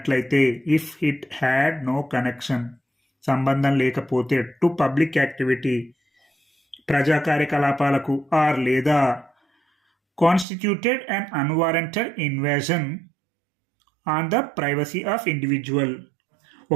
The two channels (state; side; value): drops out; left; at 10.5 s